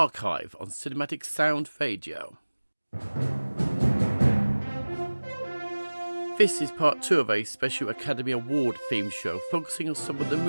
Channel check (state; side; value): inverted; both; correlation -1.00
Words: on Cinematic Sound Radio. This is part 2 of a special Academy Award theme show focusing on some of the